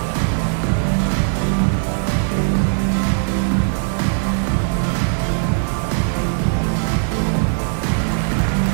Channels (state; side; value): silent; left; digital silence